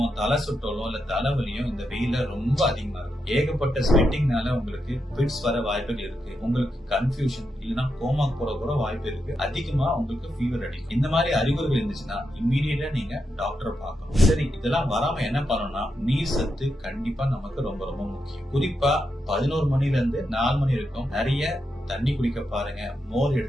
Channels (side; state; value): both; normal; correlation 0.84